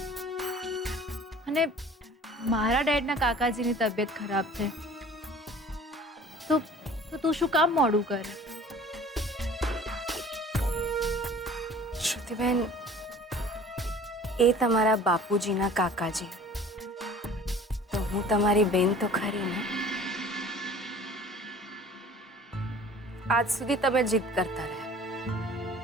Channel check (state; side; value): normal; both; correlation 0.47